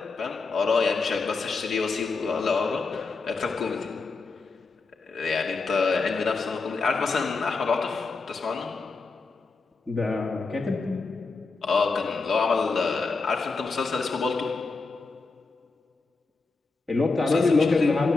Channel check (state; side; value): quieter; right; 4.1 dB